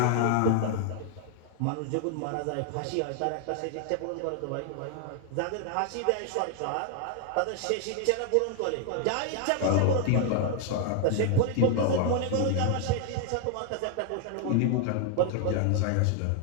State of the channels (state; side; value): different; both; correlation 0.00